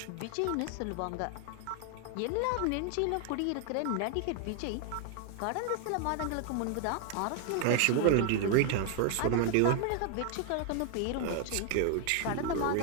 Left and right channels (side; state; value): both; different; correlation 0.00